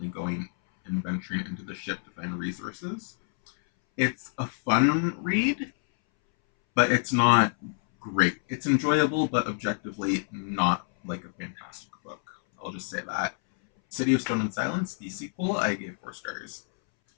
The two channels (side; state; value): right; silent; 60 dB below the other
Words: going and venturing into the ship to find resources. It's a fun read, but it's not great. It's enjoyable, but objectively not like a fantastic book. I'll just say that. City of Stone and Silence, the sequel, I gave 4 stars.